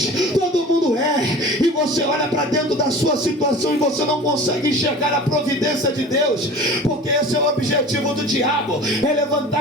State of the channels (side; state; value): both; normal; correlation 0.39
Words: todo mundo é, e você olha para dentro da sua situação e você não consegue enxergar a providência de Deus, porque esse é o objetivo do diabo, é